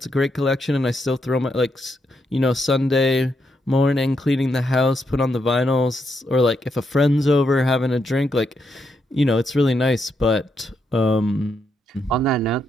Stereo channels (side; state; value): both; normal; correlation 0.80